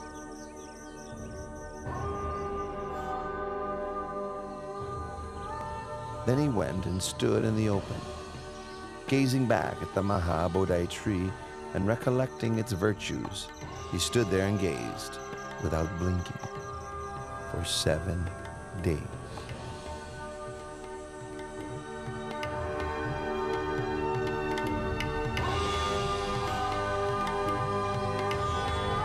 Then he went and stood in the open, gazing back at the Maha Bodhi tree and recollecting its virtues. He stood there and gazed without blinking for 7 days.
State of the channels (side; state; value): both; identical; correlation 1.00